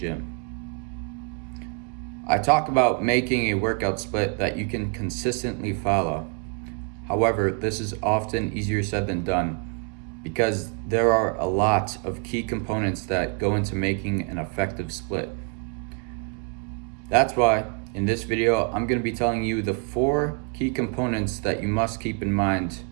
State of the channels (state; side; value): quieter; left; 37.2 dB